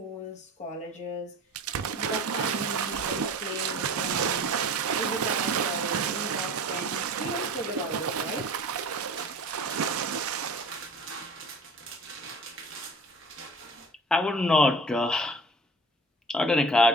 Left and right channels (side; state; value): both; normal; correlation 0.40